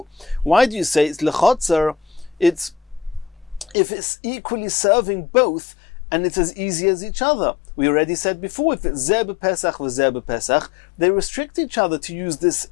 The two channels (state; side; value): drops out; right; at 3.8 s